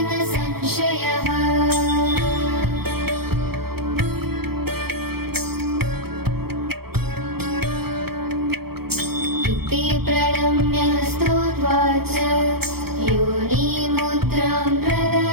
न संशयः। इति प्रणम्य स्तुत्वाच योनिमुद्रां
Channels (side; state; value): left; late; 0.96 ms